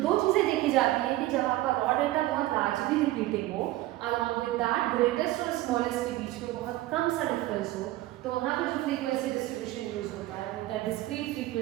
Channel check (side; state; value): left; quieter; 16.7 dB